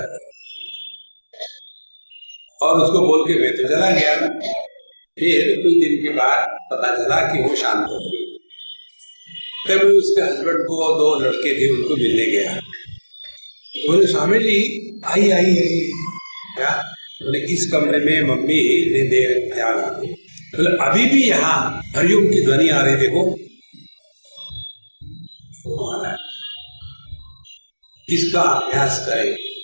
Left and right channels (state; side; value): inverted; both; correlation -1.00